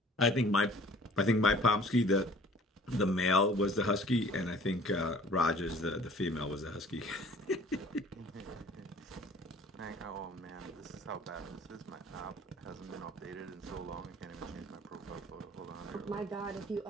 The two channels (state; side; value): normal; both; correlation 0.51